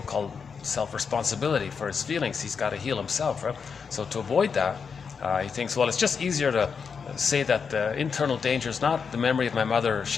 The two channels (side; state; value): right; quieter; 6.0 dB